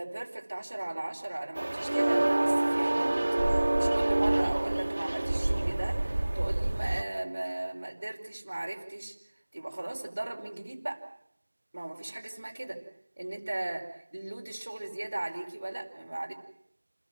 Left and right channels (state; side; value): inverted; both; correlation -1.00